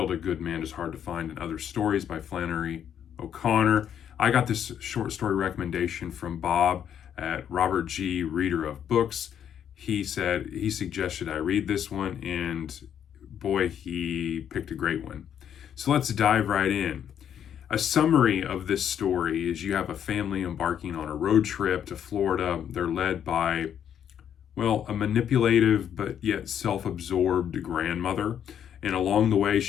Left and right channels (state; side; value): quieter; right; 9.2 dB